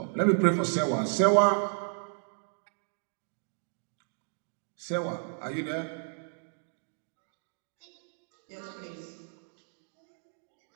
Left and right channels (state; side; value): silent; left; digital silence